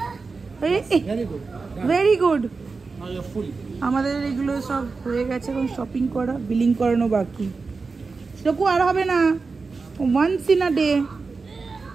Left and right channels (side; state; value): left; quieter; 4.3 dB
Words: ভেরি গুড। আমাদের এগুলো সব হয়ে গেছে, এখন শপিং করা, বিলিং করানো বাকি। সেরকম আর হবে না, ওয়ান্স ইন আ ডে